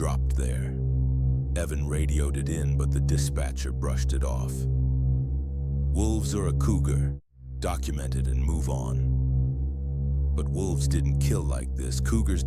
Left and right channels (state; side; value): identical; both; correlation 1.00